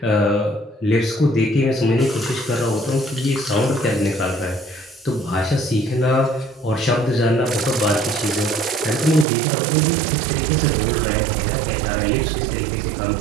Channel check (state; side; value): drops out; left; at 9.2 s